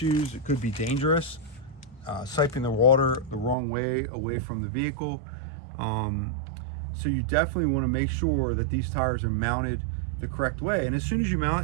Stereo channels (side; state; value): left; drops out; at 3.6 s